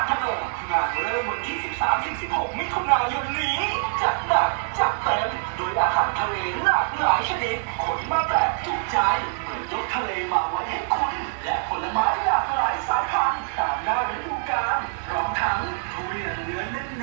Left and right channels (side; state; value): left; silent; 62 dB below the other